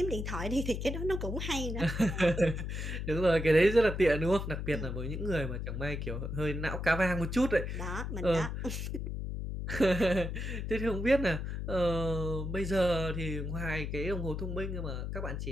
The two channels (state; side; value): noise; left; hum, 4 dB below the sound